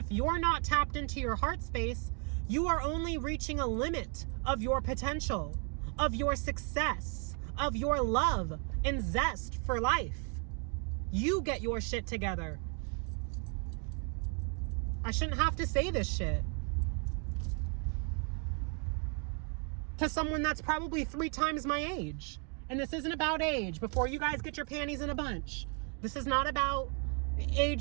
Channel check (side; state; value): left; quieter; 38.9 dB